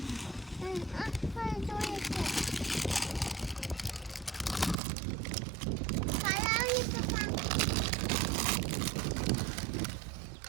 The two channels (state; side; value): drops out; left; at 4.8 s